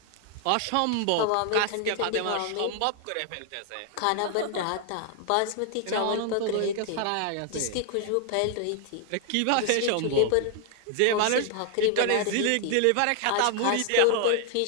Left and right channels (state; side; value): different; both; correlation 0.00